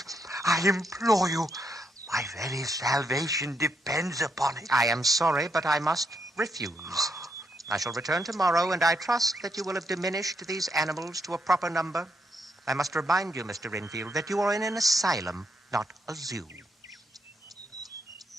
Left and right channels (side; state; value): both; normal; correlation 0.78